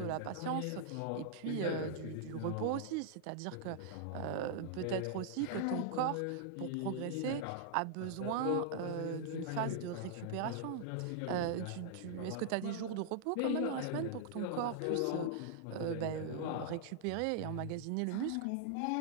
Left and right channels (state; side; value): different; both; correlation -0.01